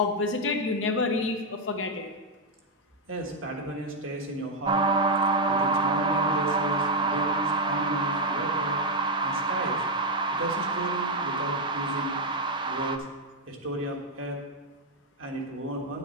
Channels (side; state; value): both; normal; correlation 0.01